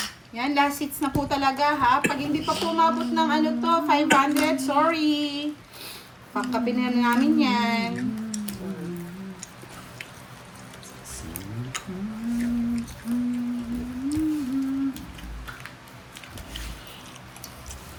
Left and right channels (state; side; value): identical; both; correlation 1.00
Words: Yan, last hits na po talaga ha. Pag hindi pa po umabot ng ano to, 500, sorry. Pangkapi na namin yan.